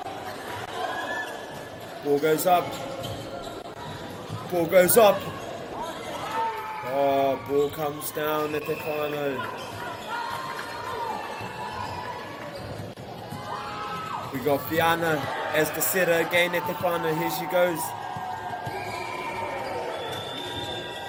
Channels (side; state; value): both; identical; correlation 1.00